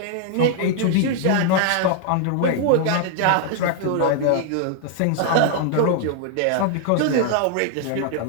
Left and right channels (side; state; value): both; different; correlation 0.00